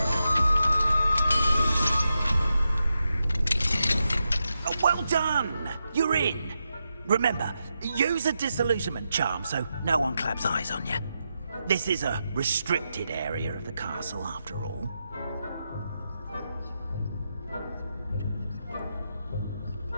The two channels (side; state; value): both; inverted; correlation -0.86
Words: Well done! You're in. Remember, use a disillusionment charm so no one claps eyes on you. This is a restricted area of the castle, after all.